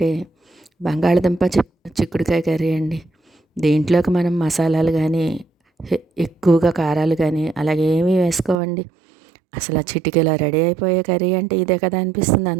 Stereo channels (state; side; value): drops out; left; at 8.6 s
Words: బంగాళదుంప చిక్కుడుకాయ కర్రీ అండి. దీంట్లోకి మనం మసాలాలు కానీ ఎక్కువగా కారాలు కానీ అలాగే ఏమీ వేసుకోవండి. అసలు ఆ చిటికెలా రెడీ అయిపోయే కర్రీ అంటే ఇదే కదా అనిపిస్తుంది.